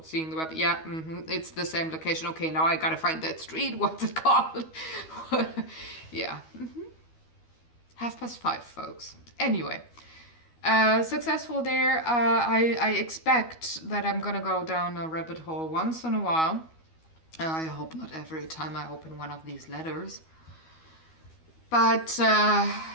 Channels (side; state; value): right; late; 12 ms